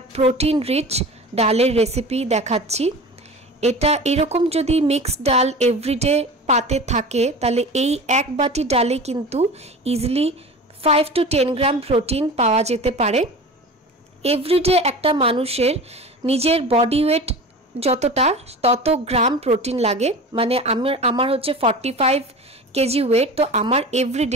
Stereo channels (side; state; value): both; normal; correlation 0.34